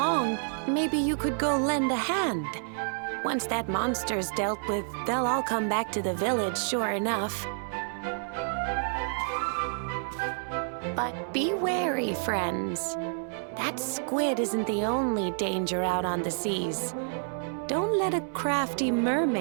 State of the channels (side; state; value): left; silent; 59 dB below the other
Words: maybe you could go lend a hand. Once that monster's dealt with, they'll all come back to the village, sure enough. But be wary, friends. That squid isn't the only danger out on the seas. Don't let a crafty